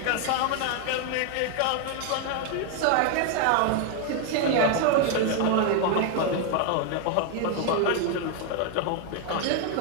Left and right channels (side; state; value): both; different; correlation 0.01